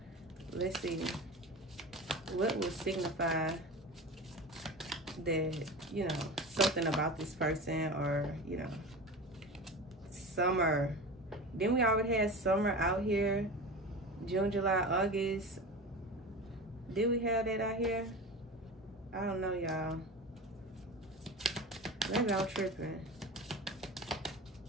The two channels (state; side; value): normal; both; correlation 0.30